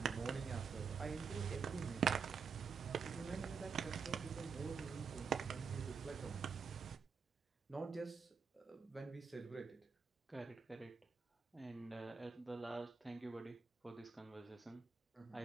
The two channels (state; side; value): quieter; left; 5.6 dB